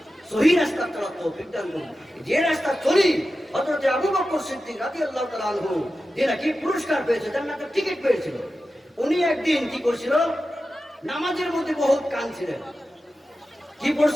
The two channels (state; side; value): normal; both; correlation 0.93